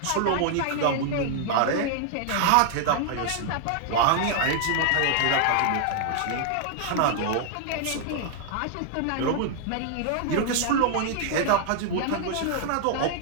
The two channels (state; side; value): different; both; correlation 0.00